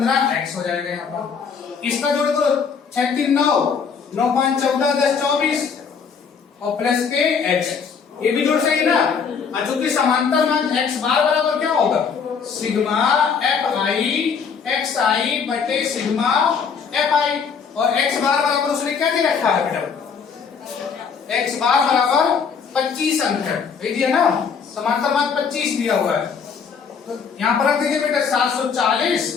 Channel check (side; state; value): right; quieter; 6.2 dB